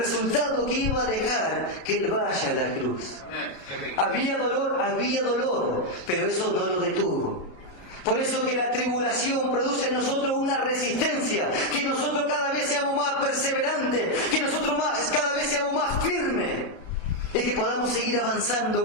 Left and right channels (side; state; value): right; late; 33 ms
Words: que iba a dejar que Él vaya a la cruz. Había dolor, pero eso no lo detuvo. Por eso que la tribulación produce en nosotros una resistencia, que nosotros cada vez seamos más perseverantes, que nosotros cada vez seamos más firmes y que podamos seguir avanzando